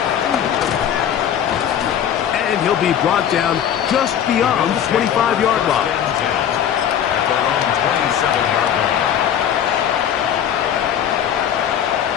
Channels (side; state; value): right; quieter; 9.5 dB